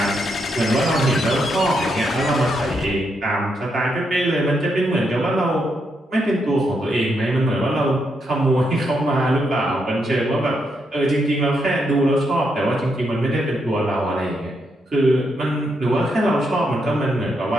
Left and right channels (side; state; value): both; normal; correlation 0.80